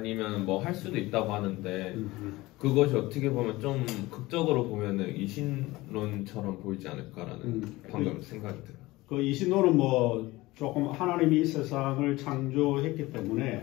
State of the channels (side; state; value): right; quieter; 19.8 dB